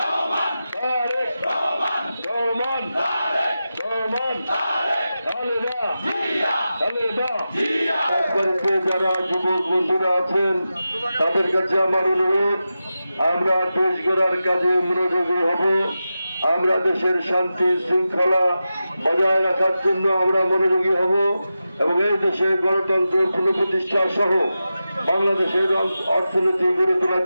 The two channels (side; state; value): both; inverted; correlation -0.92